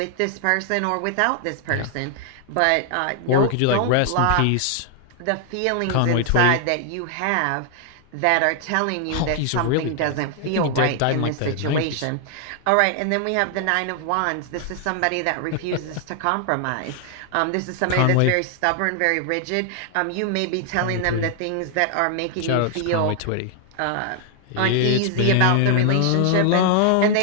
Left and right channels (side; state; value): both; different; correlation 0.00